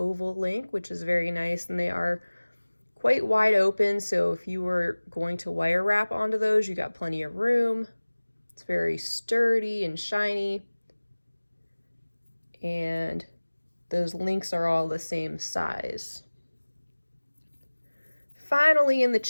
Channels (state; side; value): inverted; both; correlation -1.00